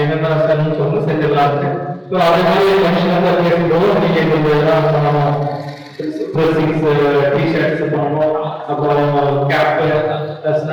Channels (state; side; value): identical; both; correlation 1.00